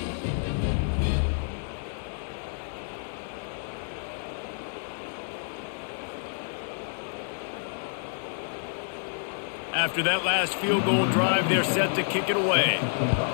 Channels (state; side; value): silent; right; 59 dB below the other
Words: After that last field goal drive, they're set to kick it away.